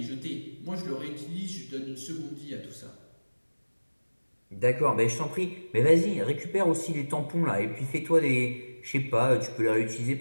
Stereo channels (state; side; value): inverted; both; correlation -1.00